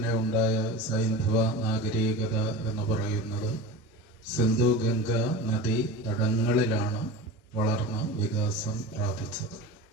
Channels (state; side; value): normal; both; correlation 0.31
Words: ഉണ്ടായ സൈന്ധവ നാഗരികത എന്ന് പറയുന്നത് സിന്ധു ഗംഗ നദി തടങ്ങളിലാണ് വളർന്ന് വികാസം പ്രാപിച്ചത്.